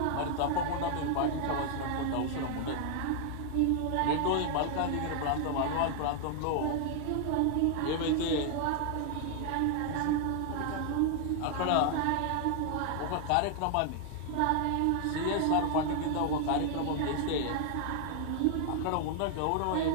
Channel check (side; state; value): both; different; correlation 0.00